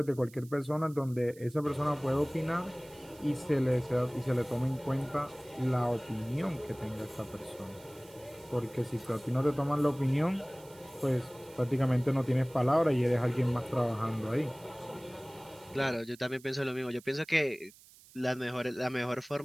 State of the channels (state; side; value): noise; right; hiss, 23 dB below the sound